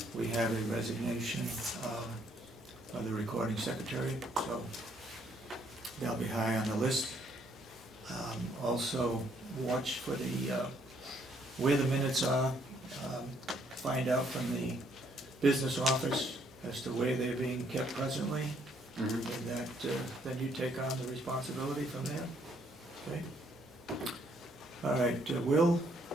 we have a resignation of the recording secretary, so they'll be high on the list. Also, watch for the where the minutes are. Find out from the business office as to where they're being kept presently, and that then you take on the responsibility from there. Okay? All right, Will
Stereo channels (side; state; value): both; normal; correlation 0.68